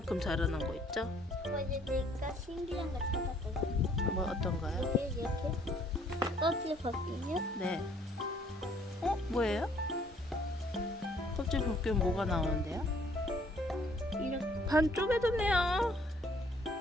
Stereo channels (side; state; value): both; normal; correlation 0.62